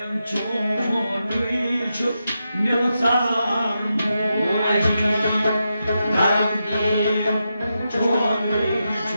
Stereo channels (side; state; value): both; inverted; correlation -0.87